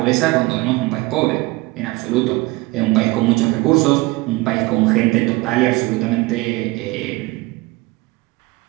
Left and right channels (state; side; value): quieter; left; 22.3 dB